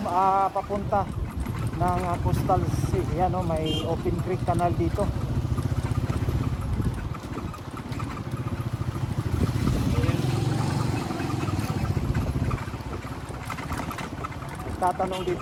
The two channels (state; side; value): identical; both; correlation 1.00